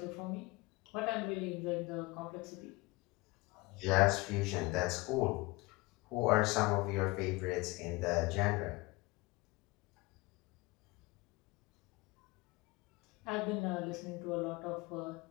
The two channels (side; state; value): right; quieter; 23.3 dB